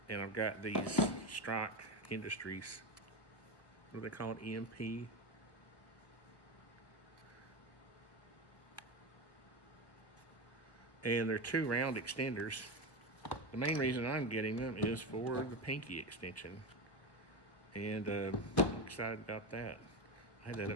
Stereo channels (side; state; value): right; late; 1.1 ms